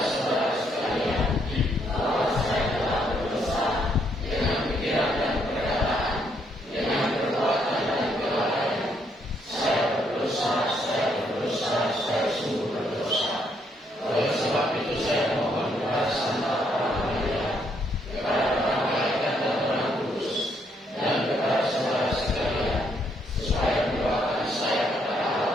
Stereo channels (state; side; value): normal; both; correlation 0.72